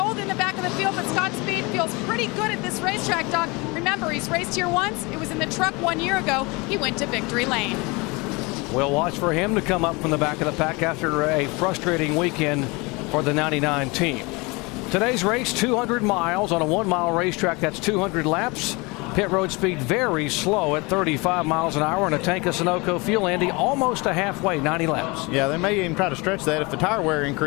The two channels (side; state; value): right; quieter; 26.3 dB